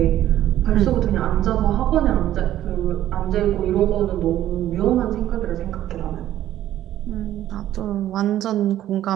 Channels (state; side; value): quieter; left; 12.7 dB